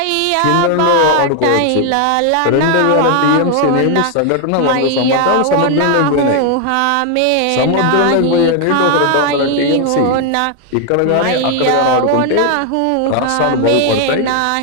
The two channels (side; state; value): both; different; correlation 0.00